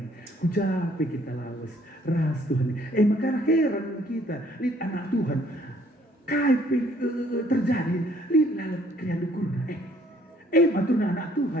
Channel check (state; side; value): normal; both; correlation 0.62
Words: Kujape kita lawas. Ras Tuhan ni. Maka heran kita. Lihat anak Tuhan. Kaipe terjadi. Lihat lalap kriya dukurna. Matuna anak